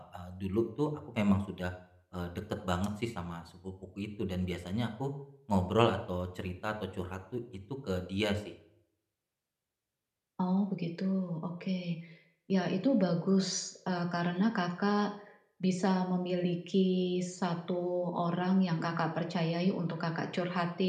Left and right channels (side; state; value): both; identical; correlation 1.00